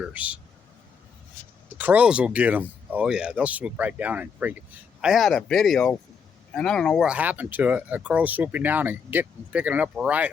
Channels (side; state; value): right; quieter; 6.2 dB